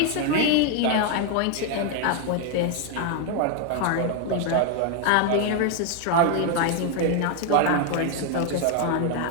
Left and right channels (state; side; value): different; both; correlation 0.01